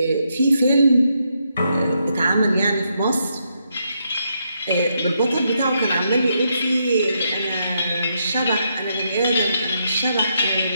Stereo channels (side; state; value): both; inverted; correlation -0.79